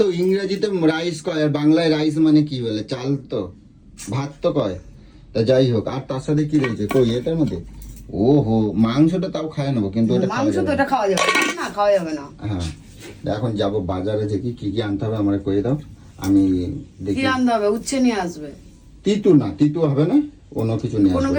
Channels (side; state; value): both; identical; correlation 1.00